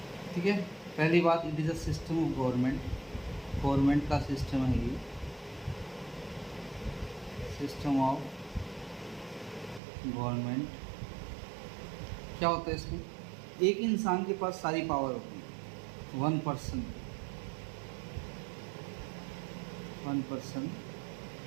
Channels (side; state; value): left; drops out; at 9.8 s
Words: ठीक है, पहली बात, it is a system of government का सिस्टम है ये, सिस्टम ऑफ गवर्नमेंट। क्या होता है इसमें, एक इंसान के पास सारी पावर होती है, वन पर्सन